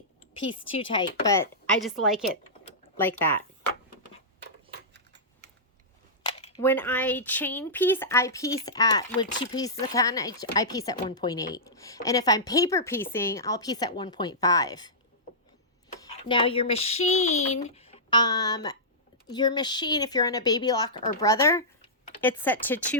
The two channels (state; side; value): normal; both; correlation -0.15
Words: piece too tight, but I just like it like that. When I chain piece, I piece with 2 pieces of cotton, I piece at 1.8. And if I'm paper piecing, I'll piece at 1.5. Now your machine, if you're on a baby lock or brother, it's set to